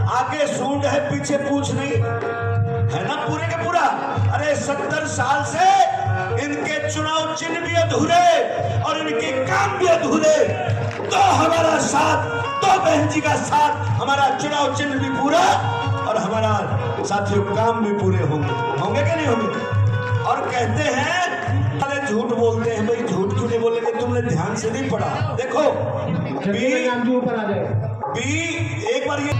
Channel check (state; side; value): identical; both; correlation 1.00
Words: आगे सूंड है पीछे पूछ नहीं है ना, पूरे के पूरा। अरे 70 साल से इनके चुनाव चिन्ह भी अधूरे और इनके काम भी अधूरे, तो हमारा साथ, तो बहन जी का साथ, हमारा चुनाव चिन्ह भी पूरा और हमारा साथियों काम भी पूरे होंगे कि नहीं होंगे? और कहते हैं अरे झूठ बोलते हैं। भाई झूठ क्यों नहीं बोलेंगे? तुमने ध्यान से नहीं पढ़ा। देखो बी एक बार ये